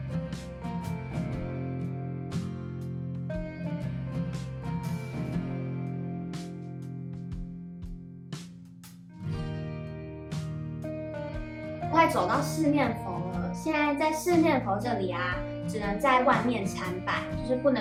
快走到四面佛了，现在在四面佛这里啊，只能在外面参拜，就是不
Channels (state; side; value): identical; both; correlation 1.00